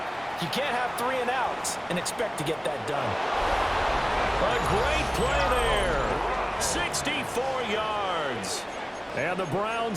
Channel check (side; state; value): both; identical; correlation 1.00